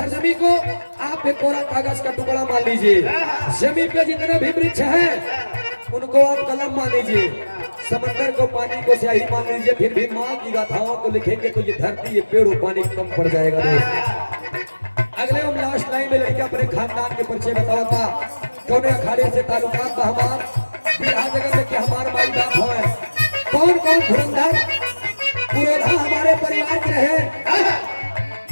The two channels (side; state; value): both; inverted; correlation -1.00